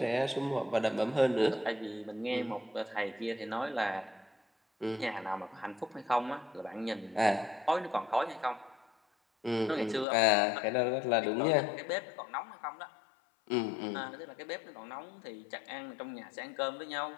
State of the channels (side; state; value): right; drops out; at 10.1 s